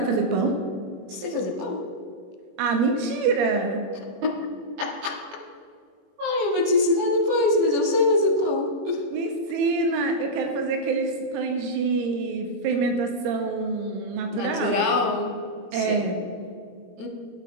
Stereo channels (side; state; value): left; late; 21 ms